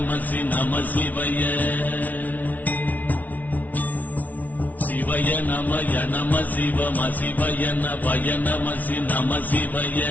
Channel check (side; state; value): right; late; 0.075 ms